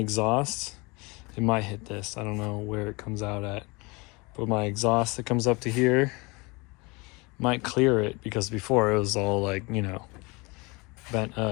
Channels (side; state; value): right; quieter; 26.4 dB